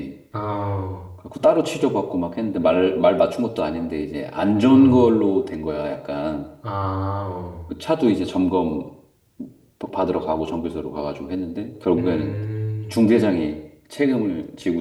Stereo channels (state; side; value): identical; both; correlation 1.00